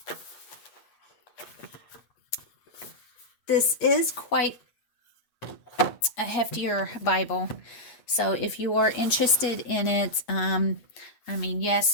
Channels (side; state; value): right; late; 8.0 ms